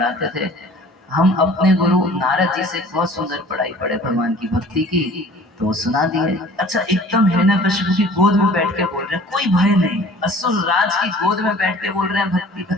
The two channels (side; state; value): both; normal; correlation 0.48